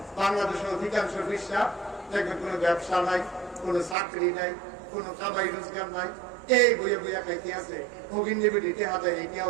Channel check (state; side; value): drops out; left; at 4.0 s